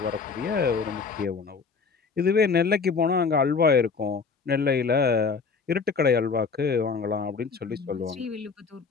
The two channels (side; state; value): right; quieter; 5.0 dB